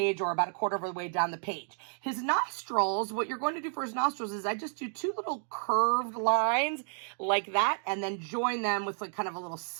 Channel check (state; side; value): silent; left; 57 dB below the other